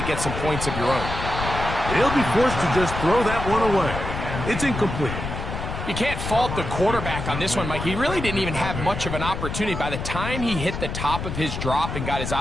get some points of your own. He'll be forced to just throw that one away. It's incomplete. You can't fault the quarterback on this one, Mike. He really didn't even have much of an opportunity. By the time he hit the top of his drop and got his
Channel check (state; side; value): noise; left; rumble, 5 dB below the sound